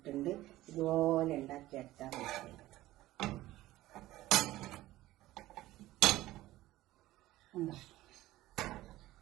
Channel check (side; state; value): left; quieter; 16.3 dB